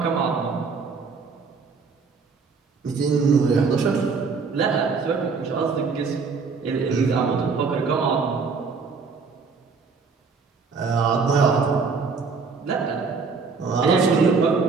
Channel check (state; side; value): quieter; left; 4.9 dB